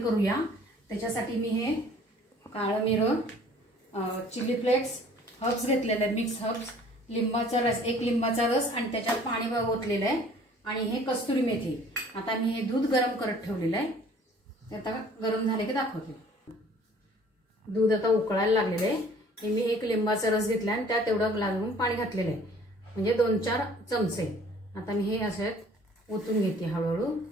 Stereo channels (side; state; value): both; normal; correlation 0.53